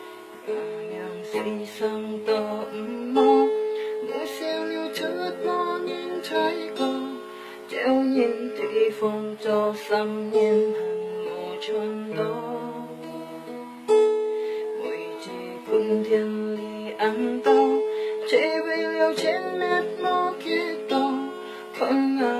sang tỏ mô mỗi siêu lưu chất mô nhìn thấy có treo nhìn thị phong cho xăm nhìn hẳn mô chân đó mỗi chỉ quân thiên lý ăn to chế với liều trên mét mô kia to không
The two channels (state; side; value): identical; both; correlation 1.00